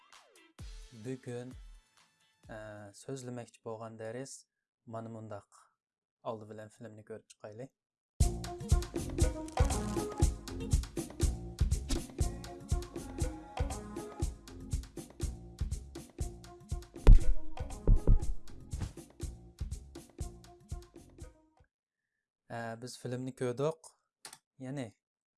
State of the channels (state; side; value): identical; both; correlation 1.00